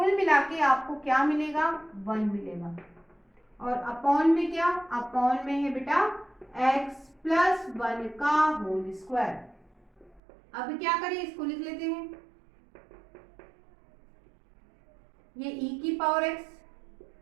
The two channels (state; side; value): drops out; left; at 10.2 s